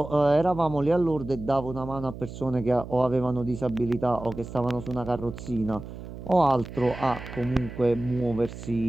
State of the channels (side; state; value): right; noise; hum, 12 dB below the sound